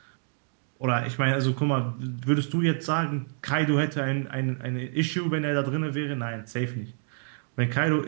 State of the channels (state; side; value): silent; left; digital silence